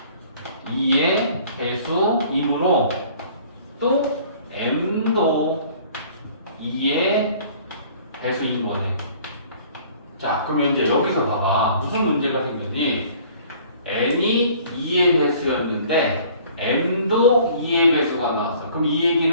2의 배수이므로 또 m도 2의 배수인 거네. 자, 그럼 이제 여기서 봐봐. 무슨 문제가 생겼니? n이 2의 배수였는데 m도 2의 배수가 나왔어. 그럼 이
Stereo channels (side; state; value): both; inverted; correlation -0.53